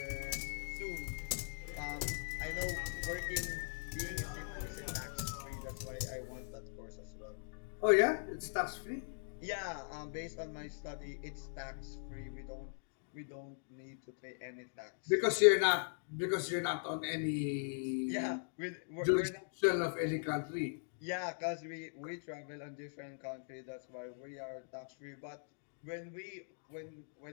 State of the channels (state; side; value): silent; right; digital silence